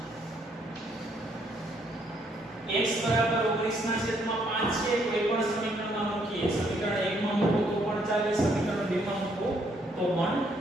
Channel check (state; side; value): normal; both; correlation 0.70